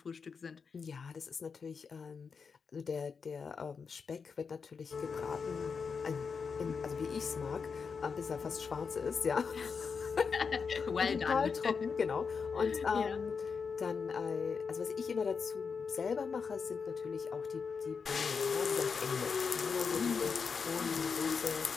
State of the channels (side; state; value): right; quieter; 5.6 dB